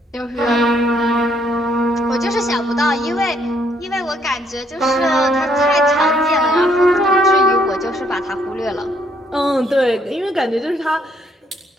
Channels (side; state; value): both; normal; correlation 0.68